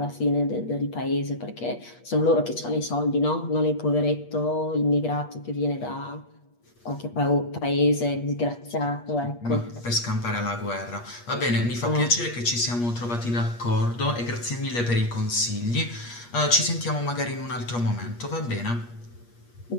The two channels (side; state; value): right; late; 8.4 ms